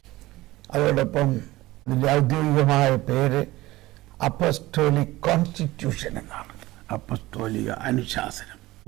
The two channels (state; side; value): quieter; left; 18.3 dB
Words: അതോടൊപ്പം ഇതിൻ്റെ ഔദ്യോഗികമായ പേര് അപ്പസ്തോലിക് കോൺസ്റ്റിറ്റ്യൂഷൻ എന്നാണ്. അപ്പസ്തോലിക അനുശാസനം.